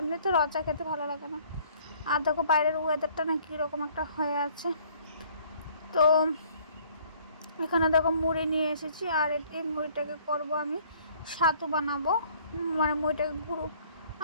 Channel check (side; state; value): both; inverted; correlation -0.58